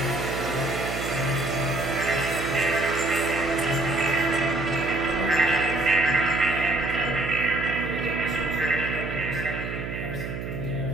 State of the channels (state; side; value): noise; right; hum, 6 dB below the sound